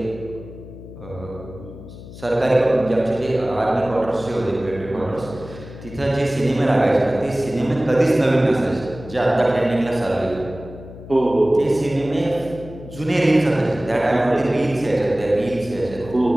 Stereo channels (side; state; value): left; noise; hum, 15 dB below the sound